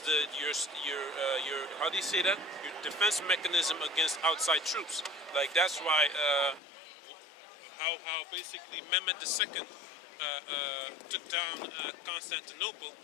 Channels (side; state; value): right; drops out; at 6.6 s